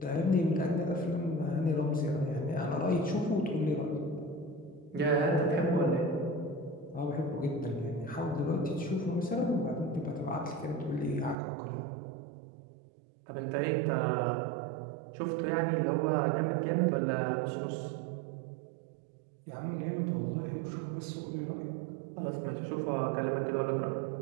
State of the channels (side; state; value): left; drops out; at 11.4 s